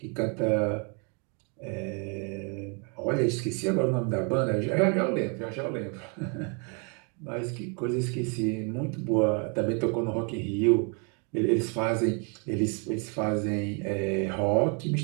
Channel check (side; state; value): left; quieter; 36.4 dB